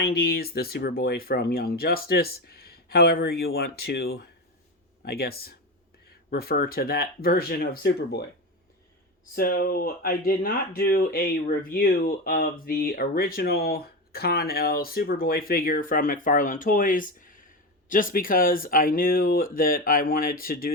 the Superboy from Young Justice, however you want to, I guess, refer to that version of Superboy. So I did not do a review of the original Con-El Superboy figure from McFarlane Toys, just because I knew that I wanted to do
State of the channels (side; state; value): both; normal; correlation 0.19